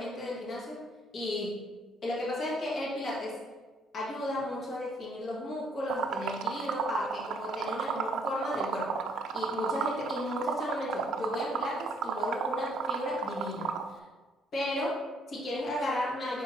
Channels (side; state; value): both; normal; correlation 0.66